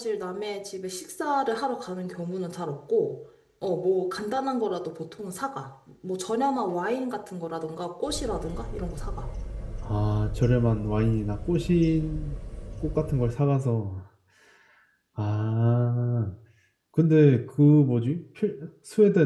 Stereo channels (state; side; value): identical; both; correlation 1.00